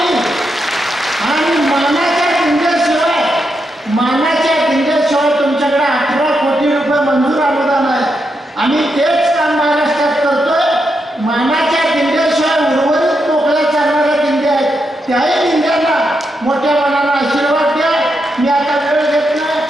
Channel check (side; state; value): both; normal; correlation 0.83